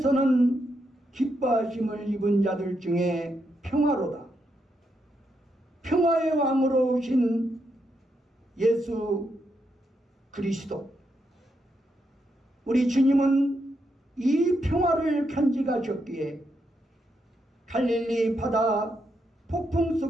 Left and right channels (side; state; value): both; normal; correlation 0.81